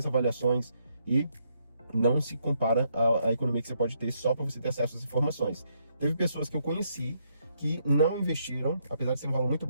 avaliações e não se compara à economia que você pode ter só para você ter acesso às informações. Teve pessoas que eu conheci que não investiram, apesar de ser um valor muito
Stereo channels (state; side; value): inverted; both; correlation -0.75